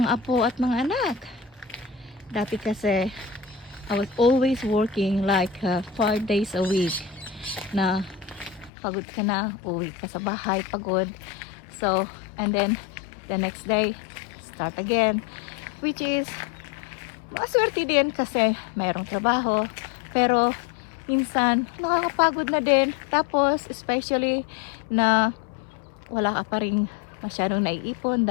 apo at mga anak. Dati kasi I was always working like 5 days a week na pagod ka na, uwi ka sa bahay pagod. So, and then the next day start again, which is maswerte din kasi mayroong trabaho, pero minsan nakakapagod na din. Tapos especially na wala ka pa rin masyadong naiipon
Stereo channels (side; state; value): right; drops out; at 8.7 s